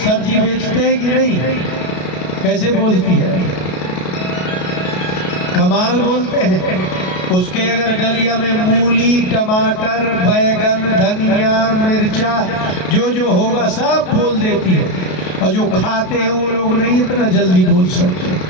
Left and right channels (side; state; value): right; late; 33 ms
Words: बेचते हैं कि नहीं? कैसे बोलती है? कमाल बोलते हैं। उसके अगर डलिया में मूली, टमाटर, बैगन, धनिया, मिर्चा जो जो होगा सब बोल देती है। और जो खाते हैं वो लोग नहीं इतना जल्दी बोल सकते।